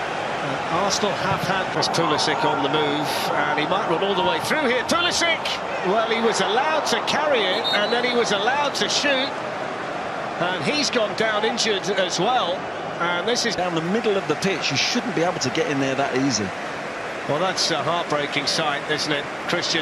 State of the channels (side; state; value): both; identical; correlation 1.00